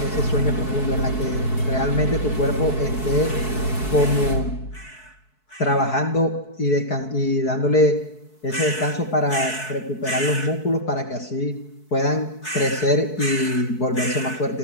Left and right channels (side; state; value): right; late; 4.6 ms